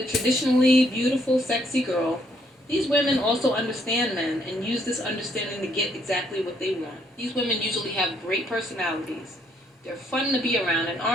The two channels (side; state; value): both; normal; correlation 0.70